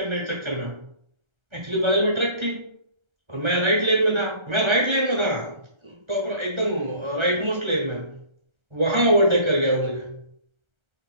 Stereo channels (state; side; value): late; left; 1.3 ms